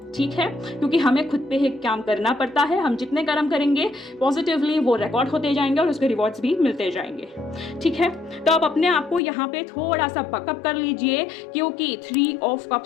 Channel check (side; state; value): right; drops out; at 9.2 s